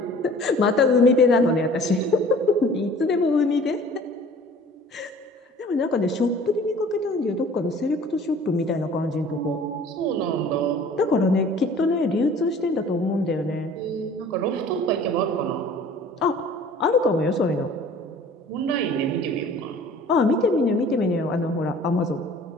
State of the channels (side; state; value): both; normal; correlation 0.48